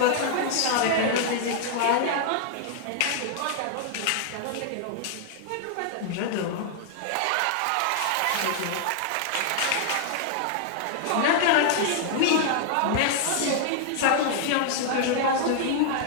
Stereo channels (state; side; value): different; both; correlation 0.00